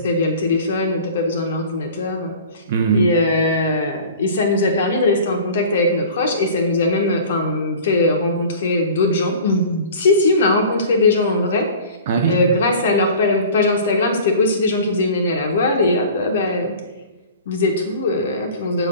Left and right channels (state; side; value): inverted; both; correlation -0.42